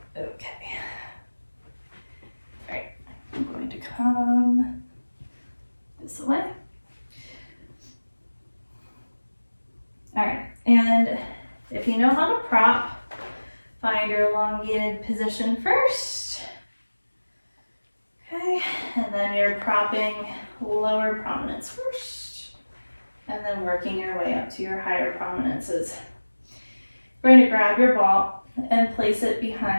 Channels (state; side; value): inverted; both; correlation -1.00